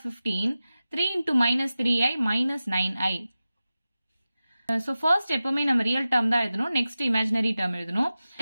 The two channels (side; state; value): both; inverted; correlation -0.95